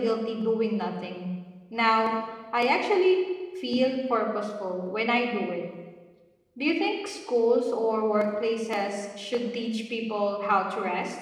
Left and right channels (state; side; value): identical; both; correlation 1.00